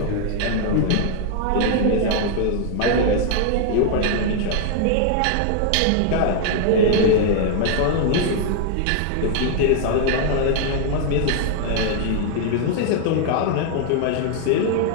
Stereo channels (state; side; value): different; both; correlation 0.00